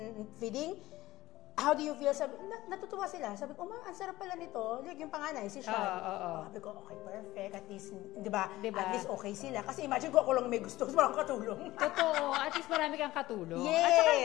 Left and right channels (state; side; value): quieter; right; 17.0 dB